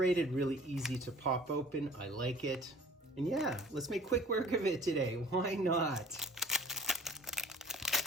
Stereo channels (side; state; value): both; normal; correlation 0.49